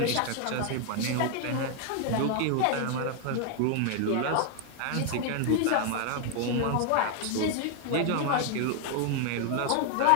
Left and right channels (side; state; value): both; different; correlation 0.00